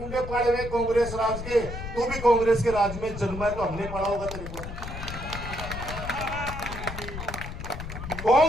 पाड़े हुए कांग्रेस राज के। तू भी कांग्रेस के राज में जन्मा है तो हमने पढ़ा होगा तेरे को।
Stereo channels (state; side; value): noise; left; rumble, 8 dB below the sound